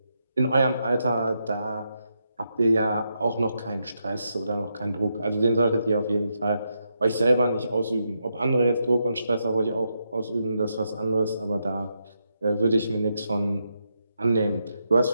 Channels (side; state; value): both; inverted; correlation -0.82